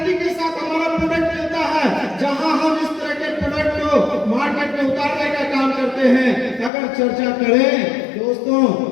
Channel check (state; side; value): drops out; right; at 6.7 s